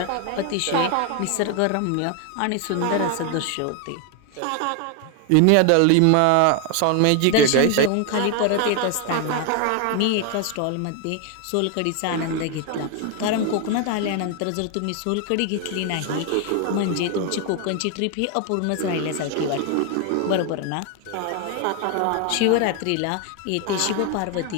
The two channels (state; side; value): different; both; correlation 0.01